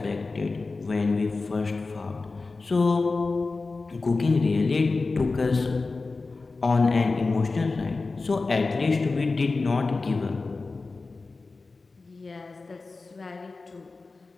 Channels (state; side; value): quieter; right; 3.8 dB